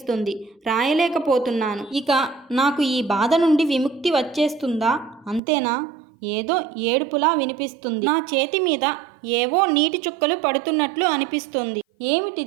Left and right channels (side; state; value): left; drops out; at 5.4 s